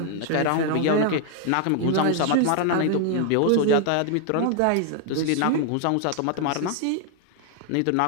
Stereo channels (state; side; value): different; both; correlation 0.00